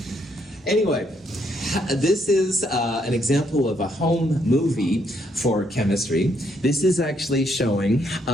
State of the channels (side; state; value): both; normal; correlation 0.73